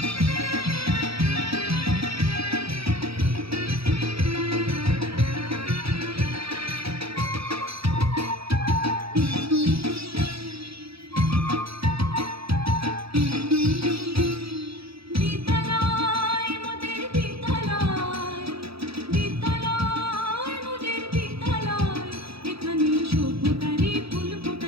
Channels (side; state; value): left; late; 0.77 ms